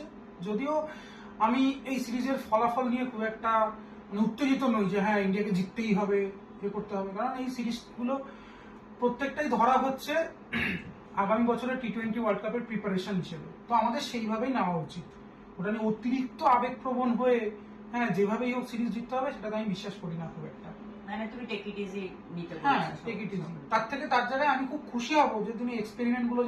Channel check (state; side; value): identical; both; correlation 1.00